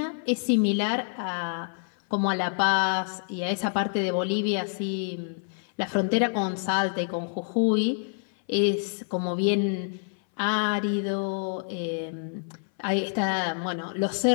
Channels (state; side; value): silent; right; 60 dB below the other